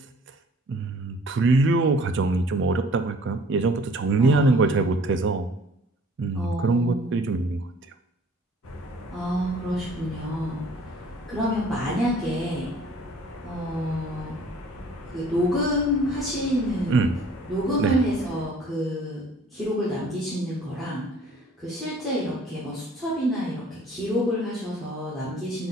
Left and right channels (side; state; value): both; normal; correlation 0.54